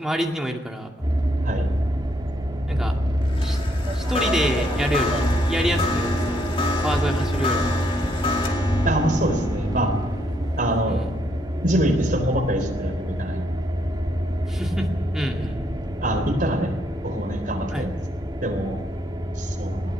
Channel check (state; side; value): normal; both; correlation 0.73